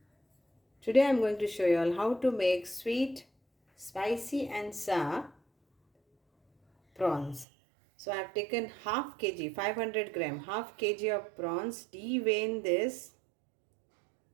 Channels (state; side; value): drops out; left; at 7.5 s